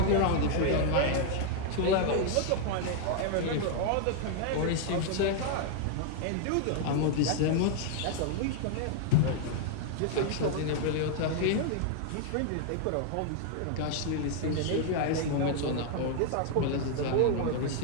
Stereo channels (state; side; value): different; both; correlation 0.00